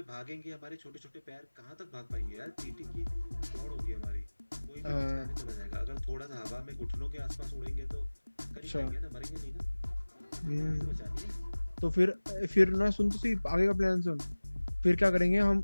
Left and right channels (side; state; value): both; inverted; correlation -1.00